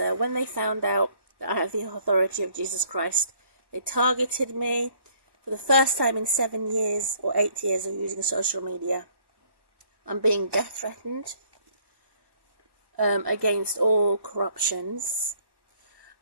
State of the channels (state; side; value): late; left; 1.1 ms